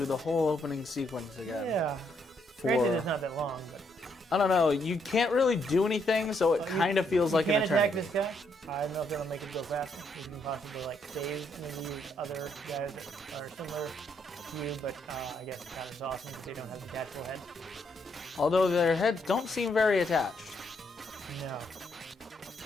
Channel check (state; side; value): normal; both; correlation 0.74